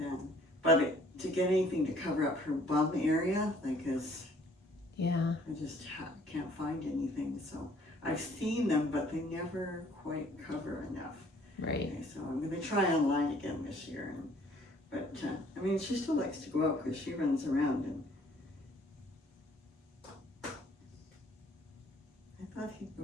But to get anything to cover up her bum area, like yeah, I just can't find anything. So I've seen them, but they never quite cover enough. Right. Okay, so I'm going to try online again this year. But I mean, she still likes to go out because she runs around. And I thought he'd go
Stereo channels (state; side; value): normal; both; correlation 0.59